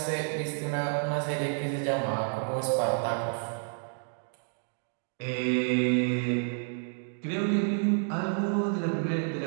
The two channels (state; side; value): silent; left; 58 dB below the other